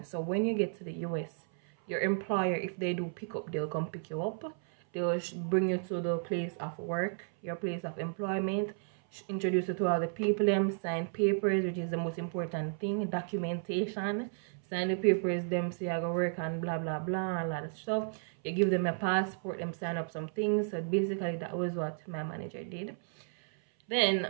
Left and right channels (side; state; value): left; silent; 56 dB below the other